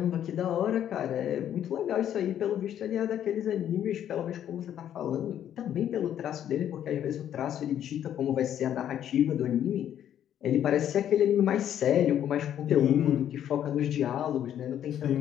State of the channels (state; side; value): quieter; right; 10.4 dB